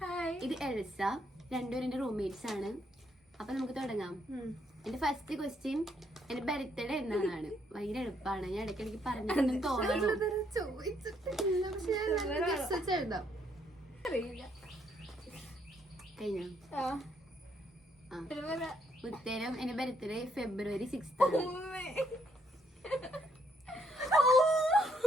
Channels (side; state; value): both; normal; correlation 0.71